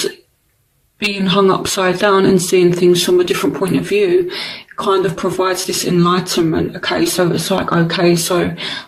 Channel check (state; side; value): identical; both; correlation 1.00